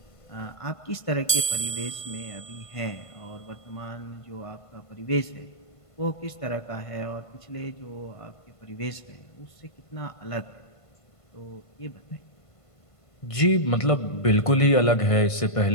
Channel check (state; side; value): late; right; 1.5 ms